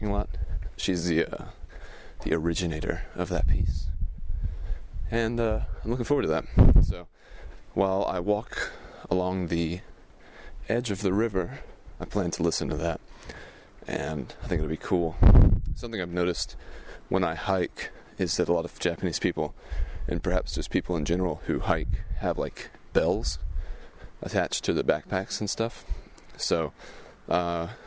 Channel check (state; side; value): identical; both; correlation 1.00